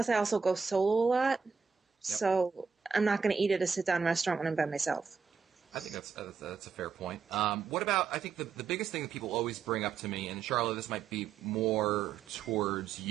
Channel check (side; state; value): left; quieter; 5.8 dB